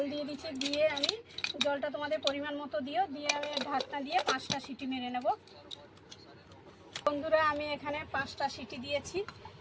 দিয়ে দিচ্ছি। দিয়ে আমি জলটা তোমাদের পরিমাণ মতো দিও, দিয়ে আমি ঢাকনা দিয়ে 5টা সিটি মেরে নেব। বন্ধুরা, আমি এখানে 5টা সিটি দিয়েছি।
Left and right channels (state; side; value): identical; both; correlation 1.00